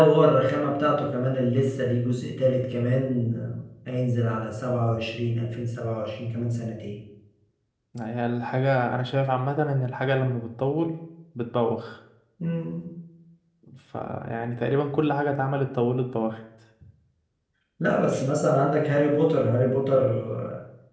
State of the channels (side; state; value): both; identical; correlation 1.00